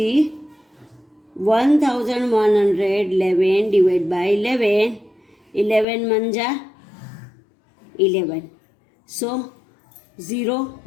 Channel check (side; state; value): right; drops out; at 5.9 s